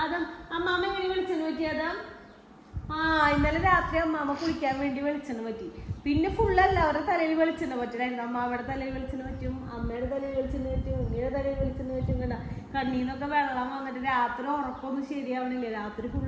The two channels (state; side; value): identical; both; correlation 1.00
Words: ആദം അമ്മാമ്മ എങ്ങനെ വെളിച്ചെണ്ണ പറ്റിയതാ? ഇന്നലെ രാത്രി അമ്മാമ്മ കുളിക്കാൻ വേണ്ടി വെളിച്ചെണ്ണ പറ്റി. പിന്നെ ഫുള്ളല്ല അവരുടെ തലയിൽ വെളിച്ചെണ്ണ പറ്റില്ലായിരുന്നു. അമ്മാവയുടെ തലയിൽ വെളിച്ചെണ്ണ പറ്റും, അമ്മയുടെ തലയിൽ വെളിച്ചെണ്ണ പറ്റും, ഉണ്ണിയുടെ തലയിൽ വെളിച്ചെണ്ണ പറ്റും. കണ്ട കണ്ണീന്നൊക്കെ വെള്ളം വന്നിട്ട് രാത്രി ഉറക്കൊന്നും ശരിയാവണില്ല. രാത്രി